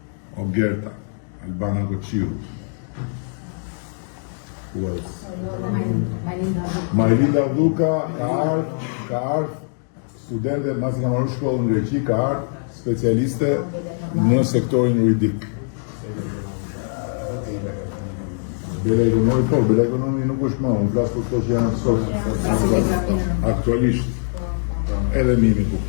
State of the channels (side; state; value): right; silent; digital silence